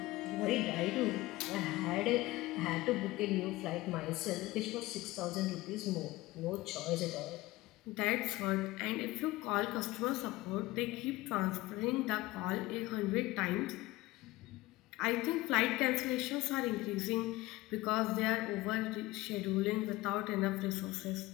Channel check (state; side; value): quieter; right; 19.1 dB